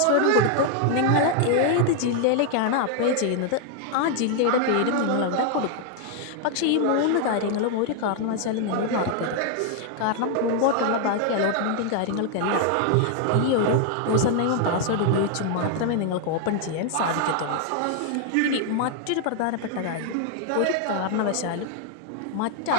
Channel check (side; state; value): both; different; correlation 0.00